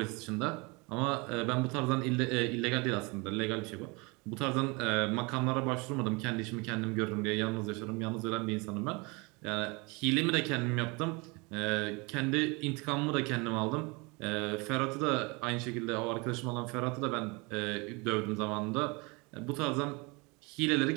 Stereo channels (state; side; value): quieter; left; 27.7 dB